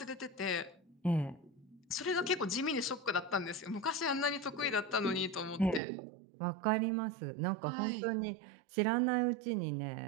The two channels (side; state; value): left; drops out; at 5.8 s